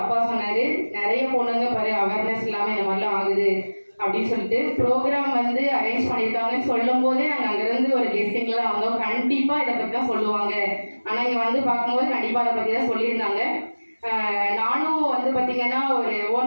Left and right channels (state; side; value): inverted; both; correlation -1.00